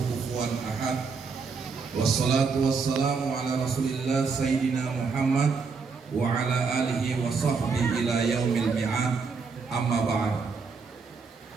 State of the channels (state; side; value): quieter; left; 5.0 dB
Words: kufuwan ahad. Wassalatu wassalamu ala rasulillah sayyidina Muhammad wa ala alihi wa sahbihi ila yaumil mi'ad. Amma ba'd.